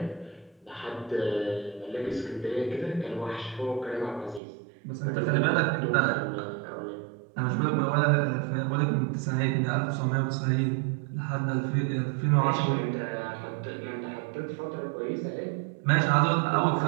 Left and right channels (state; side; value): drops out; left; at 4.4 s